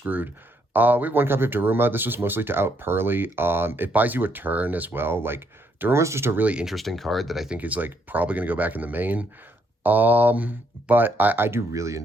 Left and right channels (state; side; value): normal; both; correlation 0.73